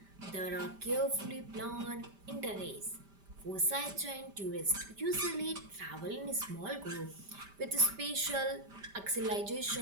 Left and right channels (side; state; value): left; late; 5.1 ms